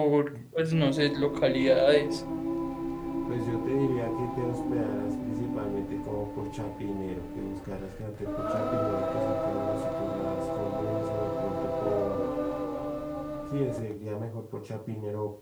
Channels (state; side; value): identical; both; correlation 1.00